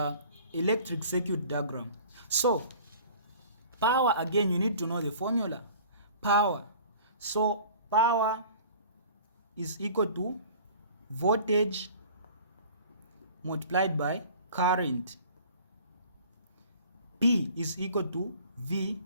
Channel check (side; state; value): both; inverted; correlation -0.46